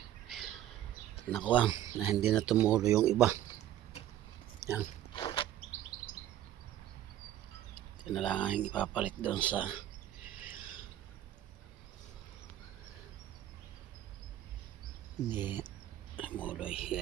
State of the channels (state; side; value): quieter; left; 12.4 dB